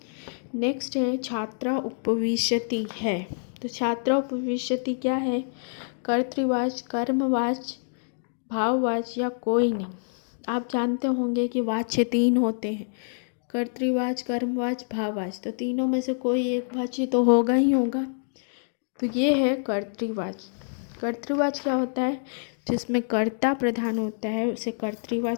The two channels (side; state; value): right; silent; digital silence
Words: नेक्स्ट है छात्रा उपविशति है। तो छात्रा उपविशति क्या है? कर्तृवाच, कर्मवाच, भाववाच या कोई नहीं। आप जानते होंगे कि वाच्य 3 होते हैं, कर्तृवाच, कर्मवाच, भाववाच। तो तीनों में से कोई एक वाच्य तो होगा ही होगा। तो ये है कर्तृवाच। कर्तृवाच क्या होता है? जिसमें कर्ता प्रधान होता है उसे